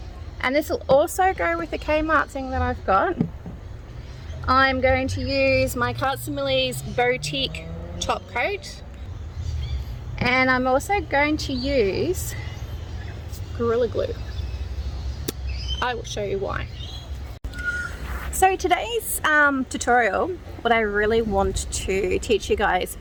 And this will also go with the Kmart thing that I've got. I'm going to use my Kmart and Millie's boutique top coat. And I'm also going to use Gorilla Glue. I will show you why. So today's tutorial, what I really want to teach you guys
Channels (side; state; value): both; identical; correlation 1.00